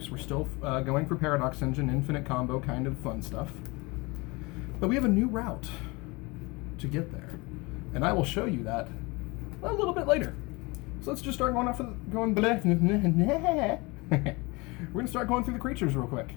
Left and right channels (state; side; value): quieter; right; 25.5 dB